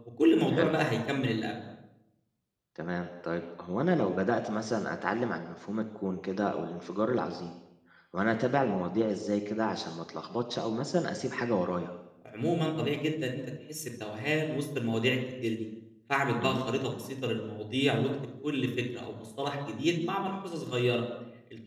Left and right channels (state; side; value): identical; both; correlation 1.00